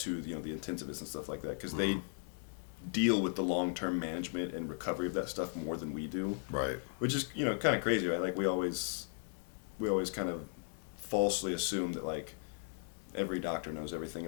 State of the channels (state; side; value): silent; right; 53 dB below the other